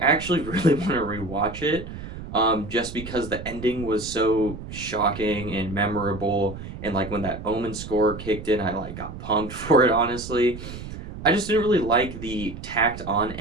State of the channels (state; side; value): noise; right; rumble, 11 dB below the sound